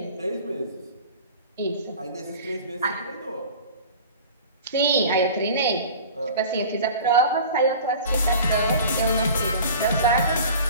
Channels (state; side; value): inverted; both; correlation -0.40